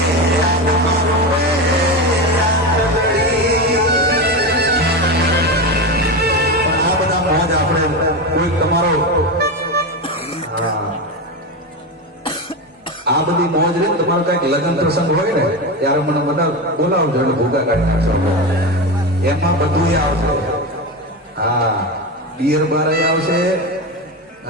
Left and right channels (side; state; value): both; normal; correlation 0.19